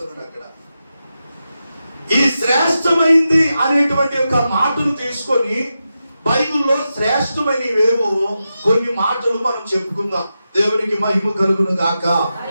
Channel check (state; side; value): inverted; both; correlation -0.90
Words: అక్కడ ఈ శ్రేష్టమైంది అనేటువంటి ఒక మాటను తీసుకొని బైబిల్లో శ్రేష్టమైనవేవో కొన్ని మాటలు మనం చెప్పుకుందాం. దేవునికి మహిమ కలుగును గాక.